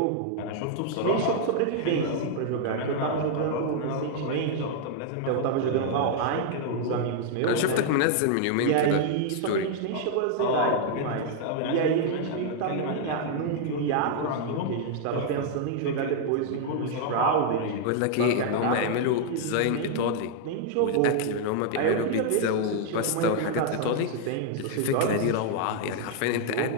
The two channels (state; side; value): different; both; correlation 0.00